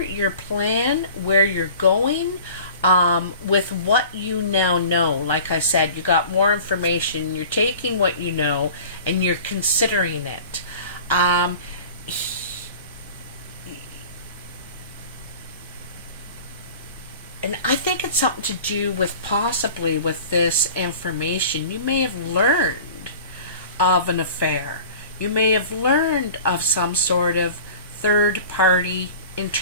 your plan, where you're going, with what you now know. Like I said, you got more information, you're taking what you know and you're considering it. And I think it's something to do with possibly with this information. You may have learned of an affair. You may have learned of some sort of third-party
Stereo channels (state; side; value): inverted; both; correlation -0.42